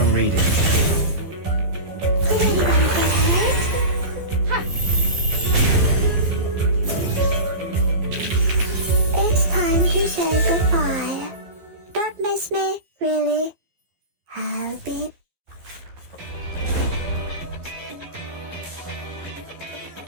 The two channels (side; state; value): left; late; 12 ms